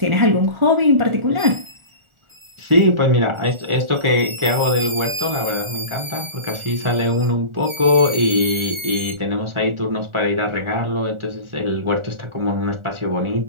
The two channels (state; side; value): late; left; 1.4 ms